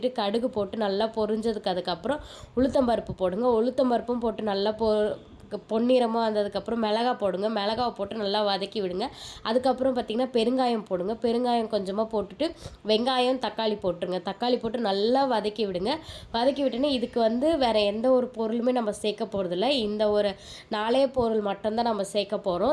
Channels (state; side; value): identical; both; correlation 1.00